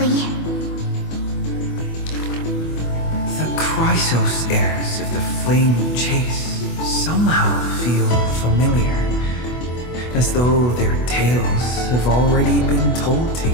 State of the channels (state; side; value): late; right; 24 ms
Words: The Chrysos heirs of the Flame Chase somehow feel familiar, as though their tales have already been told to